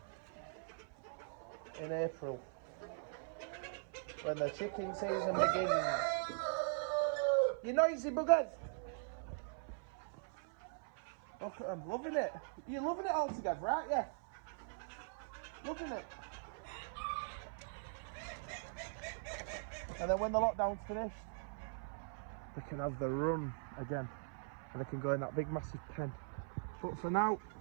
in April, when the chicken season begins. You noisy buggers! Look at them, loving it. You're loving it all together, aren't you? Loving it. And then when the lockdown's finished, they can have the run again. And they can go in that big massive pen. But for now,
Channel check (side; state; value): left; silent; 50 dB below the other